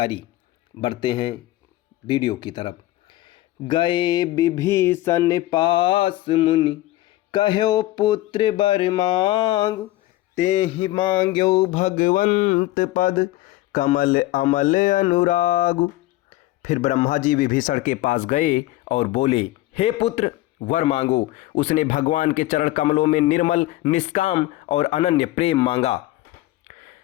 बढ़ते हैं वीडियो की तरफ। गए विभीषण पास मुनि कहो पुत्र बर मांग, तेहि मांग्यो भगवंत पद कमल अमल अनुराग। फिर ब्रह्मा जी विभीषण के पास गए और बोले, हे पुत्र वर मांगो। उसने भगवान के चरण कमलों में निर्मल निष्काम और अनन्य प्रेम मांगा।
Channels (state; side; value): quieter; right; 16.8 dB